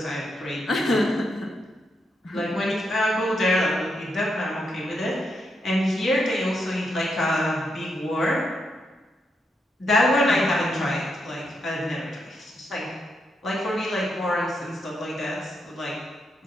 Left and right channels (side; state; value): both; normal; correlation 0.81